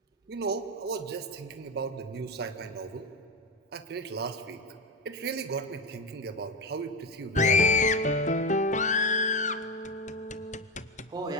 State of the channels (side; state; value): both; normal; correlation 0.17